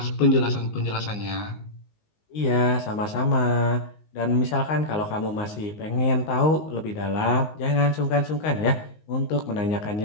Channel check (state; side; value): late; right; 19 ms